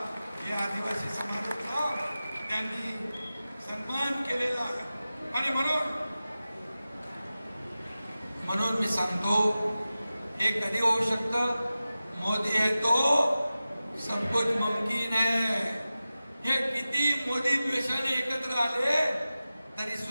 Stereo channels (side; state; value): both; inverted; correlation -0.95